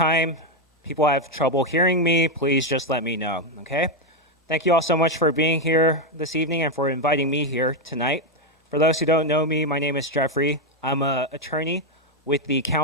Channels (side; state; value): both; normal; correlation 0.05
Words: people have trouble hearing me, please just let me know, okay? Thank you all so much for being here this evening and for inviting me here tonight. For those who don't know me, my name is Jeffrey. I'm an attorney with the